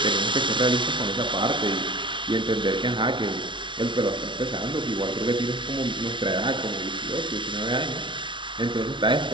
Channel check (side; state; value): left; late; 0.24 ms